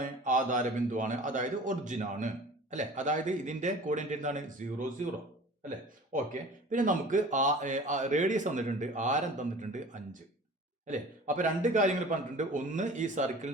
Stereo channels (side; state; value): both; normal; correlation 0.42